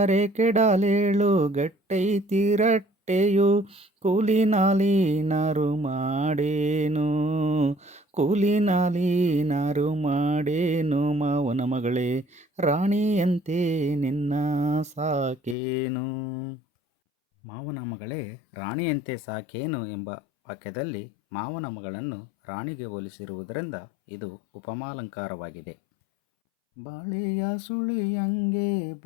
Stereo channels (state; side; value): drops out; right; at 15.6 s